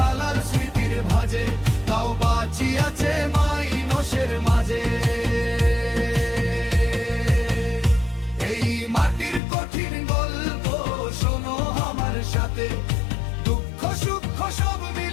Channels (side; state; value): right; drops out; at 9.4 s